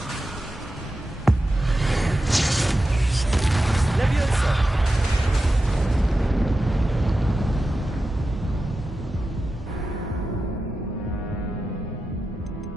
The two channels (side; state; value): both; normal; correlation 0.92